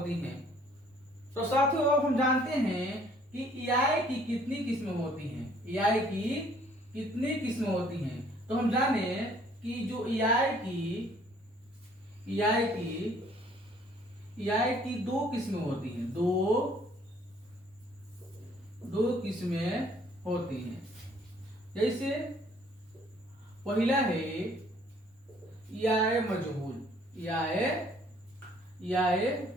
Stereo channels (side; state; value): both; normal; correlation 0.60